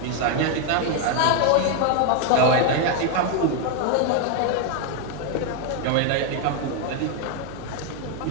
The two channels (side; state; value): both; different; correlation 0.01